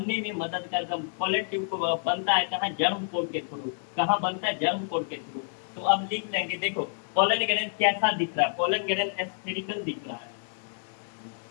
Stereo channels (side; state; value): right; silent; digital silence